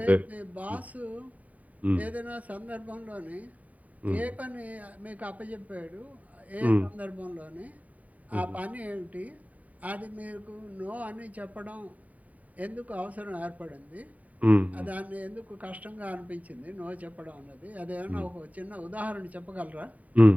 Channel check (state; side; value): late; left; 0.071 ms